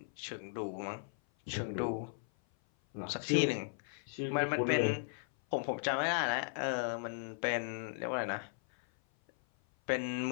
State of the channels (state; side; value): silent; right; 54 dB below the other